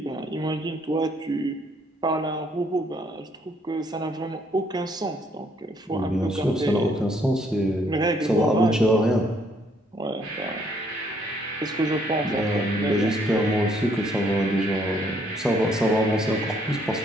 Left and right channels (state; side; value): normal; both; correlation 0.67